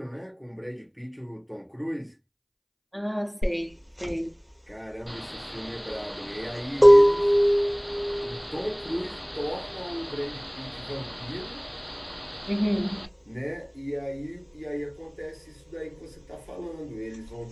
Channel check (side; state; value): both; identical; correlation 1.00